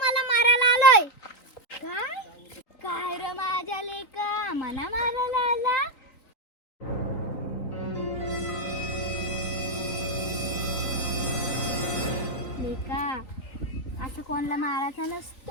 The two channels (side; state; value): right; late; 3.9 ms